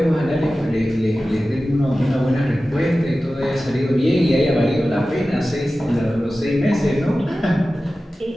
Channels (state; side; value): normal; both; correlation 0.95